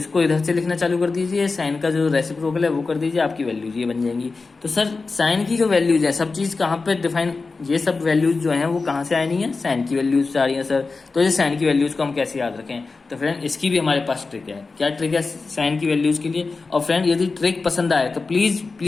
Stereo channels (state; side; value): quieter; right; 4.1 dB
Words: इधर से लिखना चालू कर दीजिए, साइन का जो रेसिप्रोकल है वो कर दीजिए, आपकी वैल्यूज ये बन जाएंगी। तो सर साइन की जो वैल्यूज है, सब चीज़ कहाँ पे डिफाइन, ये सब वैल्यूज जो हैं वो कहाँ से आई नहीं है, साइन की वैल्यूज से आ रही है सर। तो ये साइन की वैल्यूज को हम कैसे याद रखें, तो फ्रेंड इसकी भी हमारे पास ट्रिक है। क्या ट्रिक है साइन की वैल्यूज के लिए। और फ्रेंड यदि ट्रिक पसंद आए तो प्लीज़